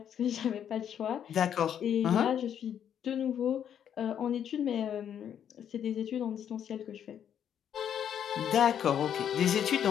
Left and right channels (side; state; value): right; quieter; 9.2 dB